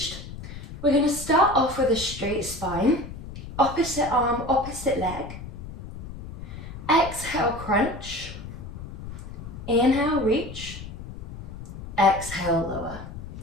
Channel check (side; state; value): left; noise; rumble, 11 dB below the sound